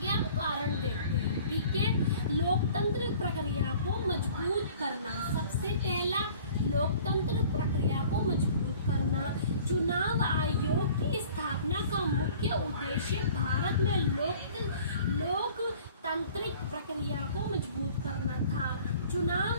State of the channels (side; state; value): both; inverted; correlation -0.49